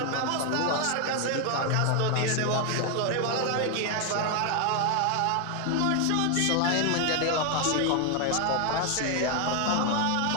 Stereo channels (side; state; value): both; different; correlation 0.00